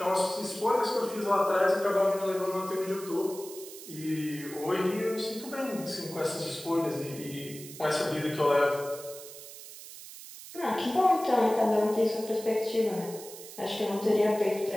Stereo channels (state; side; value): noise; right; hiss, 14 dB below the sound